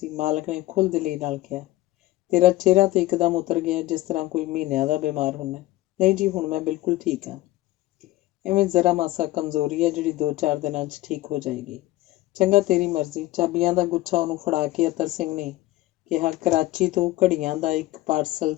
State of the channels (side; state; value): right; quieter; 17.0 dB